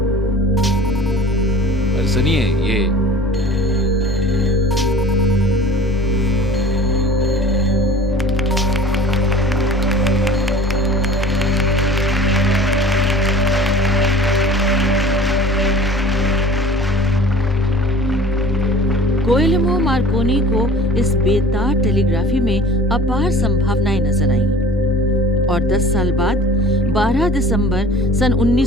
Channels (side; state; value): both; normal; correlation 0.46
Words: सुनिए, ये गुएल्मो मार्कोनी को इस बेतार टेलीग्राफी में अपार संभावनाएं नजर आईं और 10 साल बाद 12 दिसंबर सन